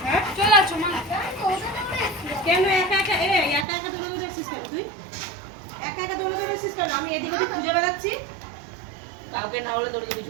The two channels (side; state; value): left; drops out; at 3.7 s